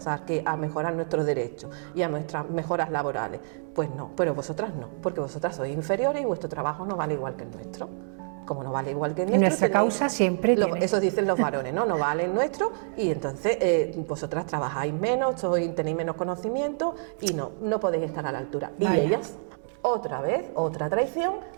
a mejorar nuestros derechos y a nuestras mejoras laborales. Pues no, pero vosotras no, porque vosotras sois inferiores y vuestro trabajo no vale igual que el nuestro. Como no vale igual que el nuestro... Nuestra causa siempre eso dicen los varones, ¿no? No vale el nuestro y entonces vosotras trabajáis menos, tenéis menos conocimiento y no podéis estar a la altura. Vaya. Y ellas, otra vez, otra traición,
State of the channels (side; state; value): left; silent; 60 dB below the other